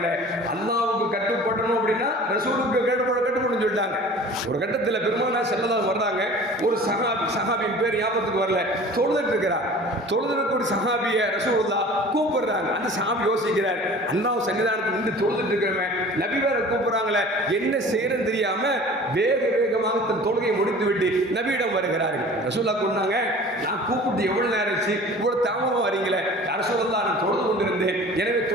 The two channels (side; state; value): both; normal; correlation 0.43